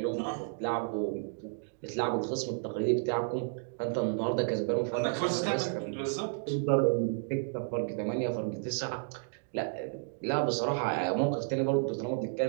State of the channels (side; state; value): left; silent; digital silence